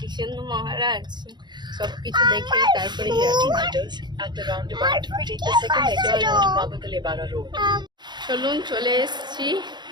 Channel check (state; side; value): late; left; 0.21 ms